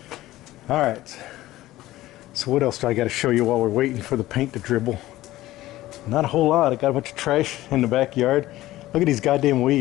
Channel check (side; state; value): right; quieter; 16.1 dB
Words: All right. So what else do I got to show you while we're waiting for the paint to dribble? Not a whole lot. I got a bunch of trash in the backyard. Look at these goddamn